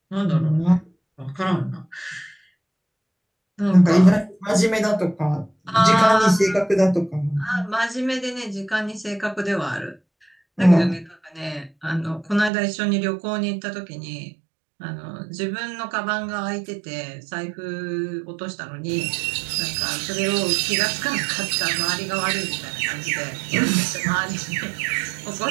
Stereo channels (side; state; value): left; drops out; at 12.5 s